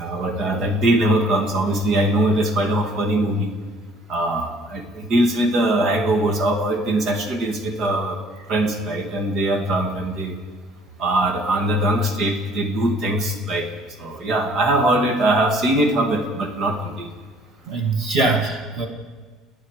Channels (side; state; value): both; normal; correlation 0.57